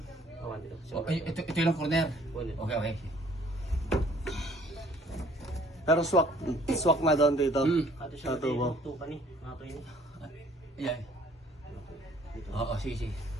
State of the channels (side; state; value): both; normal; correlation 0.58